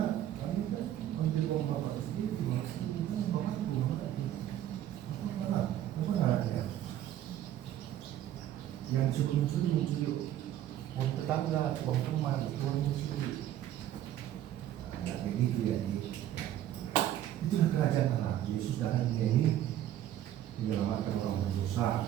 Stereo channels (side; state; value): left; quieter; 12.0 dB